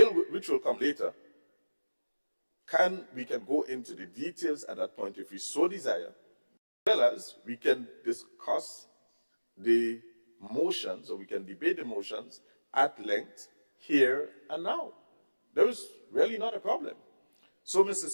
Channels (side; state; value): both; inverted; correlation -1.00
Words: which will come later, we can go into the details at that point if we so desire, as well as we can discuss the motions, or we can debate the motions at length here and now. There is really not a problem. So, Mr.